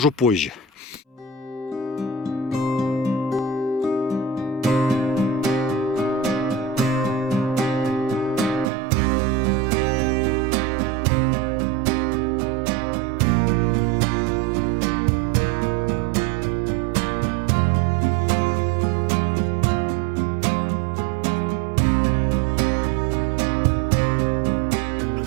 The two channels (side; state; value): left; drops out; at 8.7 s